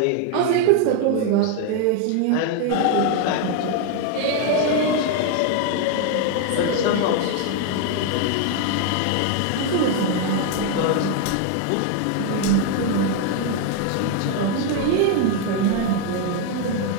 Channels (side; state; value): both; different; correlation 0.01